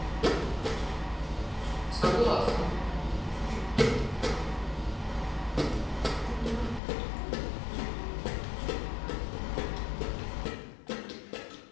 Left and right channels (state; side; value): drops out; right; at 6.8 s